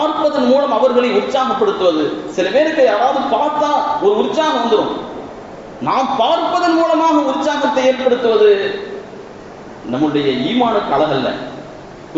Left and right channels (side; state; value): both; identical; correlation 1.00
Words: மூலம் அவர்களை உற்சாகப்படுத்துவது. சில பேருக்கு யாராவது பார்த்தா ஒரு உற்சாகம் வந்துடும். நாம் பார்ப்பதன் மூலமாக உற்சாகத்தை ஏற்படுத்துவது நம்முடைய ஈமானுக்கு அழகல்ல.